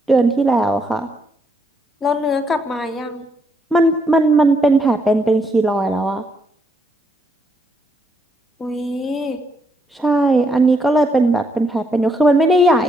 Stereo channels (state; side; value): normal; both; correlation 0.75